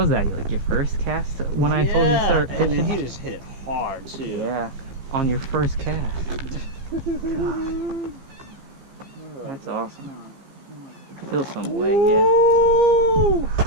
that? Like your first cast when I told you to start fishing? And he just hit it hard too. Yeah, on your first cast. God. That's awesome. Feel some way, yeah.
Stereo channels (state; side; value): late; left; 15 ms